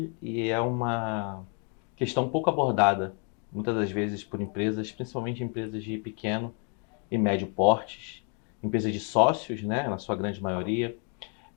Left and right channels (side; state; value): right; quieter; 39.1 dB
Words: e é uma questão pouco abordada, muitas das vezes por empresas, principalmente empresas de pequeno e médio portes, empresas de sócios, né, na sua grande maioria.